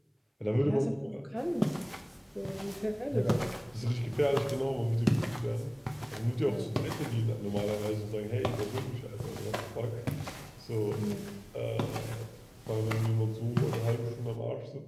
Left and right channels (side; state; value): both; identical; correlation 1.00